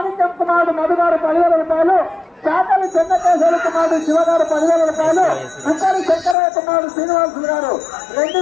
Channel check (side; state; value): right; drops out; at 6.4 s